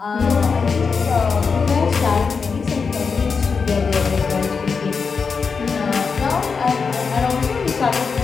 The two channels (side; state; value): right; quieter; 5.3 dB